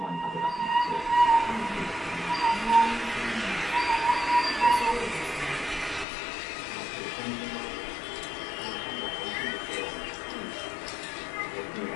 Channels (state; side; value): drops out; right; at 6.1 s